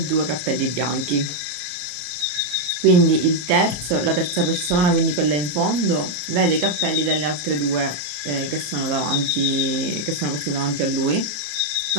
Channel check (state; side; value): late; left; 34 ms